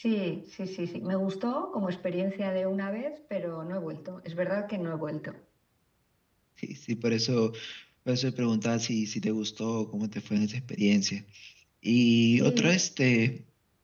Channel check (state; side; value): identical; both; correlation 1.00